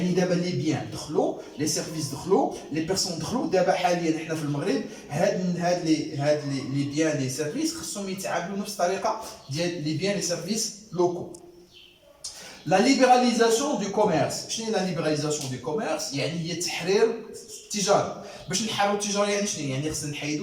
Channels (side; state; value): both; identical; correlation 1.00